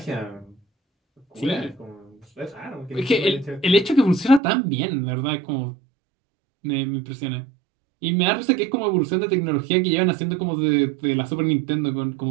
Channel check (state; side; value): drops out; left; at 4.4 s